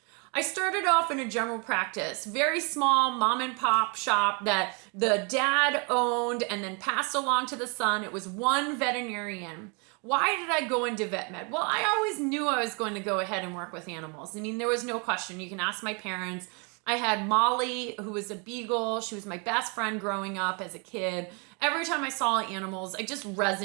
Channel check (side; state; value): left; quieter; 33.8 dB